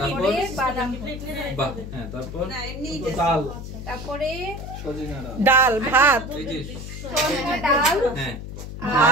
বাদাম। বাহ, হ্যাঁ, তারপর না এমনি ডাল, তারপরে ডাল, ভাত। এই যে সজনা ডাল, হ্যাঁ,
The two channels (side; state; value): left; noise; hum, 9 dB below the sound